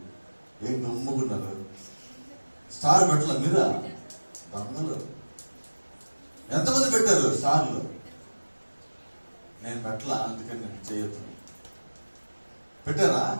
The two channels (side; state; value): both; inverted; correlation -1.00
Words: ఏం గమ్ముకున్నారు? స్టార్ పెట్టలే మీరా? దొంగలు. ఎంతమంది పెట్టారు స్టార్లు? నేను పెట్టలా, అందుకని నేను చేయొద్దు. పెట్టారా?